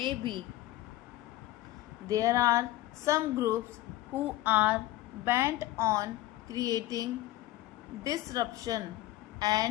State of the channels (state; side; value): quieter; right; 16.3 dB